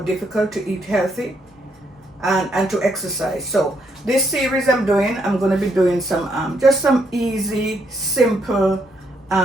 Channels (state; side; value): normal; both; correlation 0.75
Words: difficult to eat healthy and to exercise. So, this series I'm going to be doing some just some easy, simple